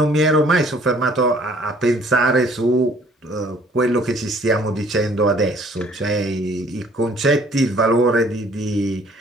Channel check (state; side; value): normal; both; correlation 0.57